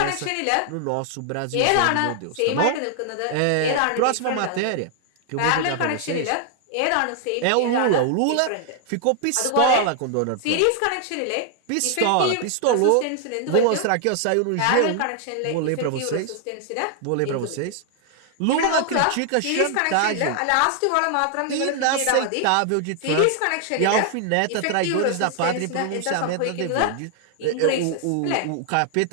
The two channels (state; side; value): different; both; correlation 0.00